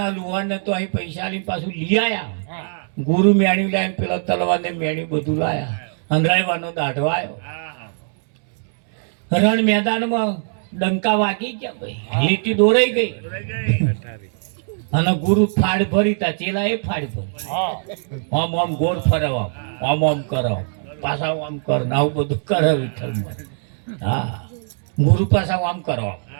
લુહારને તો અહીં પૈસા લઈને પાછું લઈ આયા. ગુરુ મેણ્યું લાવીને પેલા તલવારને મેણ્યું બધું લાયા. અંધારવાનો દાઢો આવ્યો. રણ મેદાનમાં ડંકા વાગી ગયા ભાઈ, લીટી દોરાઈ ગઈ. અને ગુરુ ફાડ ભરી તા ચેલા એ ફાડ ભરી. આમ આમ ગોળ ફરવા, આમ આમ કરો, પાછા આમ કર, આવું બધું કરે વિઠ્ઠલમાં. હા, ગુરુ પાછા આમ કરો,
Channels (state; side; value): silent; left; digital silence